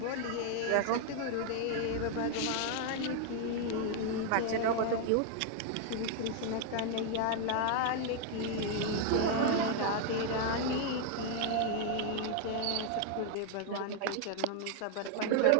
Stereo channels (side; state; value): both; different; correlation 0.00